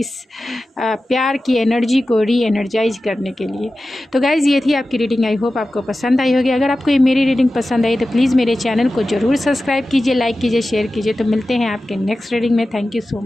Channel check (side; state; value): both; normal; correlation 0.94